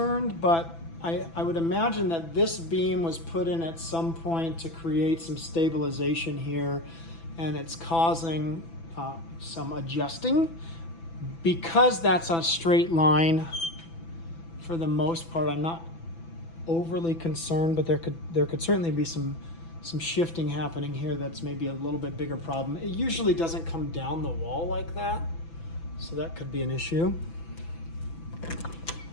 but I would imagine that this beam was put in at some point to create some stabilization here, and it's causing some adjusting. Because that's a straight line, for the most part, I'm not overly concerned, but there could certainly be some shifting happening here that's maybe a little bit bigger problem. It usually doesn't come down the wall like that, so that could be an issue.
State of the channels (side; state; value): right; late; 6.0 ms